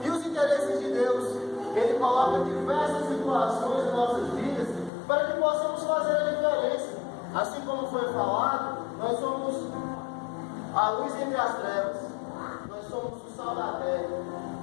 E os interesses de Deus, Ele coloca diversas situações em nossas vidas para que possamos fazer a diferença. Assim como foi falado, nós somos a luz entre as trevas. Nós somos o sal da terra.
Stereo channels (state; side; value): drops out; right; at 4.9 s